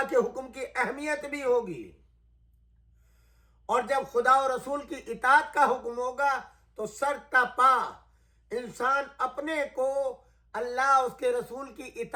کے حکم کی اہمیت بھی ہوگی، اور جب خدا و رسول کی اطاعت کا حکم ہوگا تو سر تا پا انسان اپنے کو اللہ اس کے رسول کی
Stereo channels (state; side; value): identical; both; correlation 1.00